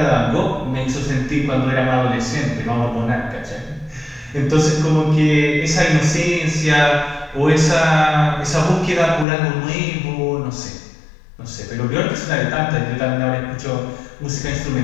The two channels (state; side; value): drops out; right; at 9.2 s